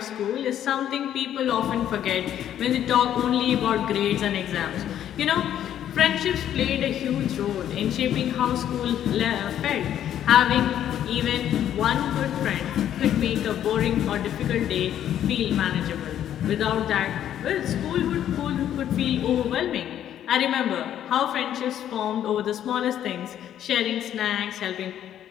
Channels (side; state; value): right; quieter; 10.7 dB